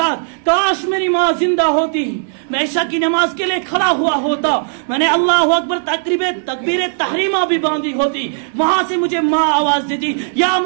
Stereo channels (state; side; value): silent; left; digital silence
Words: کاش میری ماں زندہ ہوتی، میں عشاء کی نماز کے لیے کھڑا ہوا ہوتا، میں نے اللہ اکبر تکبیر تحریمہ بھی باندھی ہوتی، وہاں سے مجھے ماں آواز دیتی یا